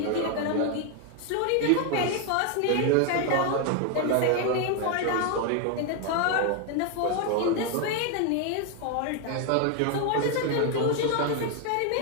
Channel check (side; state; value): both; different; correlation 0.01